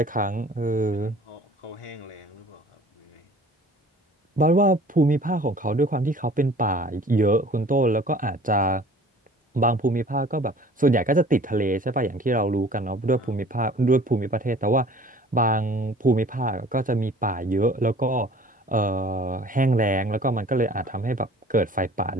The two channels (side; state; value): both; normal; correlation 0.49